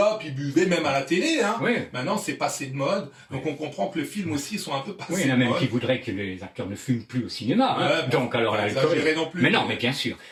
ils buvaient même à la télé. Oui. Maintenant, c'est passé de mode. Donc, on comprend que le film aussi sont un peu passés Oui, il y en a de même mode. qui voudraient que les acteurs ne fument plus au cinéma. Ouais, Donc, alors pas l'alcool. exagérer non plus. Mais non, mais bien sûr.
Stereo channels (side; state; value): both; identical; correlation 1.00